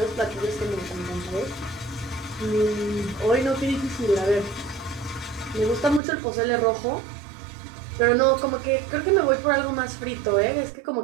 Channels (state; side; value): drops out; left; at 6.0 s